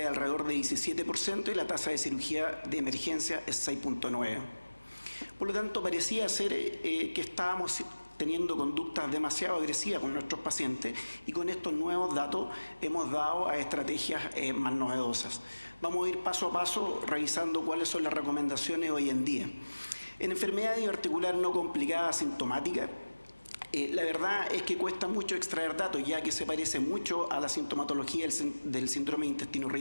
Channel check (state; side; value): inverted; both; correlation -1.00